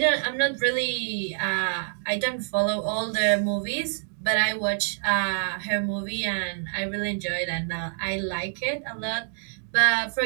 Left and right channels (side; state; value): left; silent; digital silence